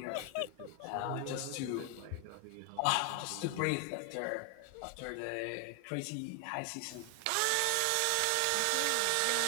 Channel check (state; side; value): different; both; correlation 0.00